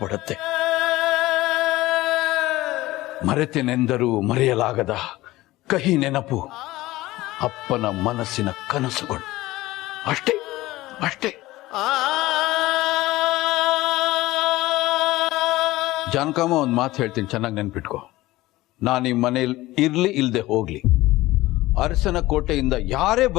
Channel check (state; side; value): quieter; right; 18.0 dB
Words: ಮರೆತೆನೆಂದರೂ ಮರೆಯಲಾಗದ ಕಹಿ ನೆನಪು, ಅಪ್ಪನ ಮನಸ್ಸಿನ ಕನಸುಗಳು. ಅಷ್ಟೇ ಅಷ್ಟೇ. ಜಾನಕಮ್ಮ ಒಂದು ಮಾತು ಹೇಳ್ತೀನಿ, ಚೆನ್ನಾಗಿ ನೆನ್ಪಿಟ್ಕೋ. ನಾನು ಈ ಮನೇಲಿ ಇರ್ಲಿ ಇಲ್ದೆ ಹೋಗ್ಲಿ, ಅರಸನ ಕೋಟೆಯಿಂದ ಯಾರೇ